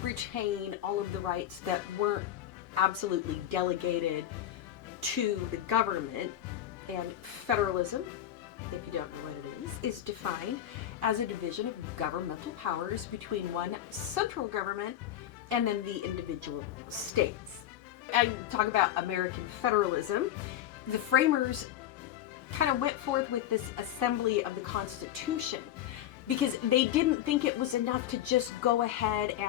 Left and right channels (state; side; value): quieter; right; 11.8 dB